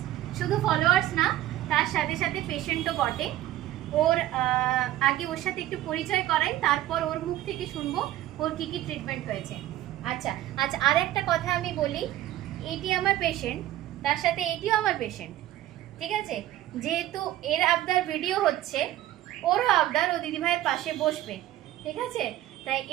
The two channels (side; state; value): left; quieter; 14.1 dB